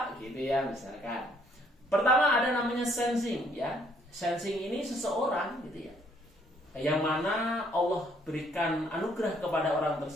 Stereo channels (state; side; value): normal; both; correlation 0.66